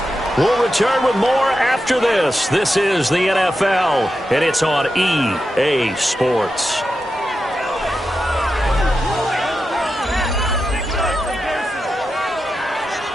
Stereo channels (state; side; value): normal; both; correlation 0.89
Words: We'll return with more after this. This is the NFL, and it's on EA Sports.